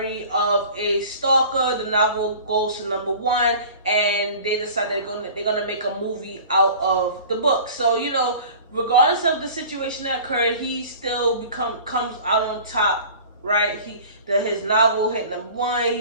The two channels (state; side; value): inverted; both; correlation -0.42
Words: of a Stalker. The novel goes to #1, and they decide they're gonna make a movie out of the book. So, you know, regardless of the situation that occurred, he still comes out on top, right? His novel hit #1.